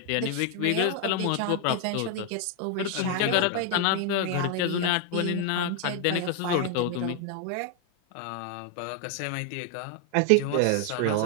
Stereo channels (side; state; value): both; different; correlation 0.00